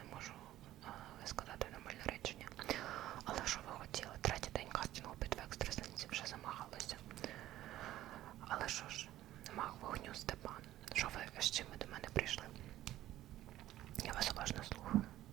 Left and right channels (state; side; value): quieter; left; 14.2 dB